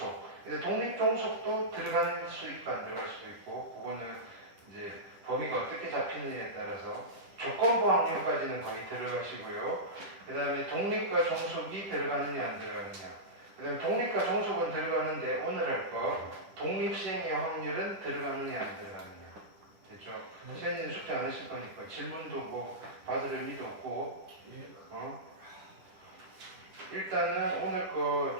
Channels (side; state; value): left; late; 10 ms